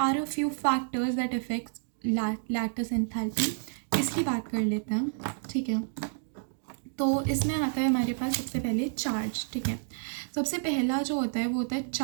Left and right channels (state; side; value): silent; left; digital silence